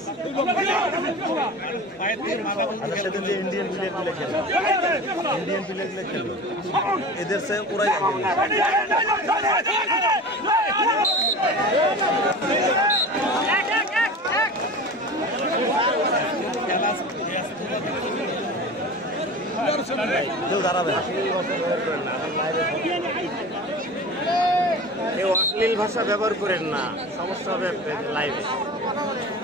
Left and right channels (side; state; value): both; normal; correlation 0.34